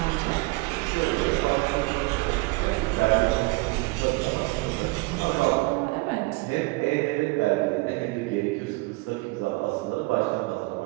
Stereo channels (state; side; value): quieter; left; 24.3 dB